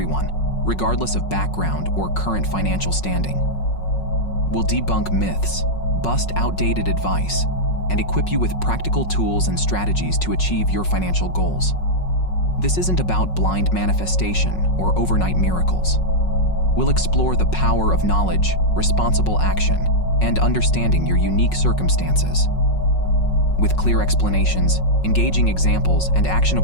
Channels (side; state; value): right; late; 5.4 ms